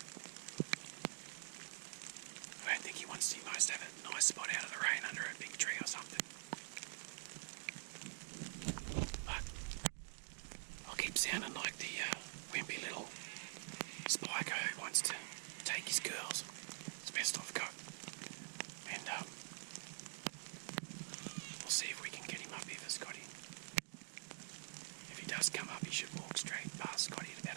I don't think he wants to. He must have a nice spot out of the rain under a big tree or something. But I'll keep sounding like the wimpy little spiker who wants to take his girls. It's the best I've got. And we'll see if we can get him up here for Scotty. If he does come up, he should walk straight past Scotty at about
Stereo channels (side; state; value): left; silent; digital silence